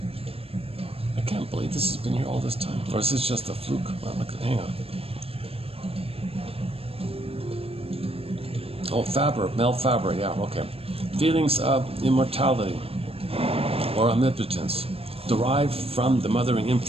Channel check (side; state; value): left; late; 0.28 ms